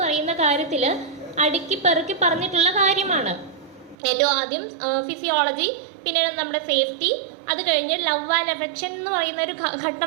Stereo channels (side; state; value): left; drops out; at 4.0 s